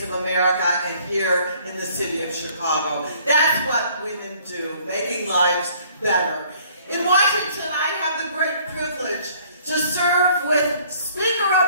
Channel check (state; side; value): inverted; both; correlation -0.58